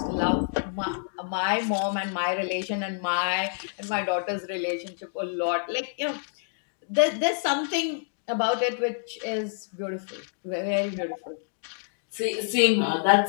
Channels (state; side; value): silent; right; digital silence